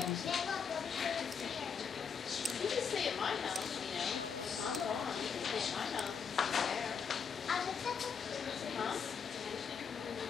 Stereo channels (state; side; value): quieter; right; 6.4 dB